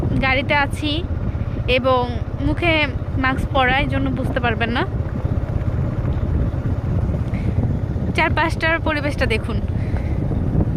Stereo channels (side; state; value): both; identical; correlation 1.00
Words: গাড়িতে আছি এবং মুখে মাস্ক পরা, এই জন্য বুঝতে পারবেন না। চারপাশটার পরিবেশটা দেখুন।